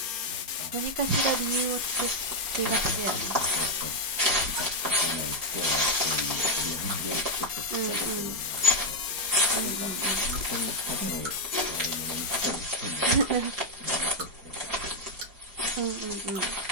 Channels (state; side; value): late; left; 4.8 ms